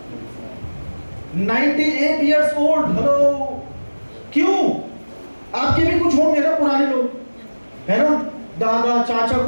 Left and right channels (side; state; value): both; inverted; correlation -1.00